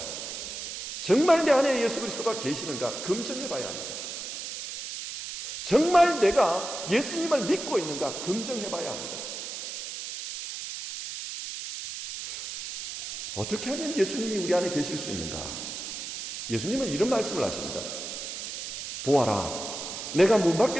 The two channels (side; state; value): right; noise; hiss, 7 dB below the sound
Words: 정말 내 안에 예수 그리스도가 계시는가 검증해 봐야 합니다. 정말 내가 예수님을 믿고 있는가 검증해 봐야 합니다. 어떻게 하면 예수님이 우리 안에 계실 수 있는가? 예수님은 이런 말씀을 하십니다. 보아라, 내가 문